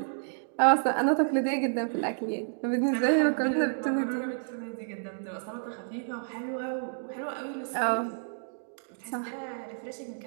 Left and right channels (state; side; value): silent; left; digital silence